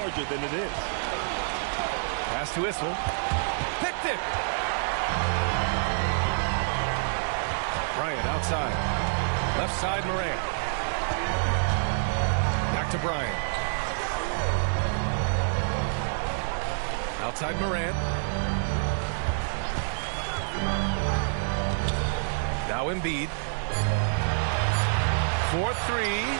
than it is. Pass to Issel. Picked it. Bryant outside. Left side, Morant. Back to Bryant. Outside Morant. Now Embiid. 4-3.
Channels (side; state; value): left; silent; digital silence